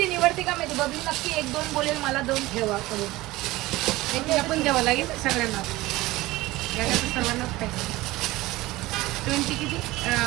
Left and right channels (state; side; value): quieter; left; 18.9 dB